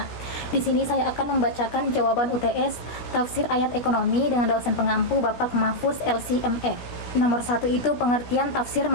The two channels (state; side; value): late; right; 17 ms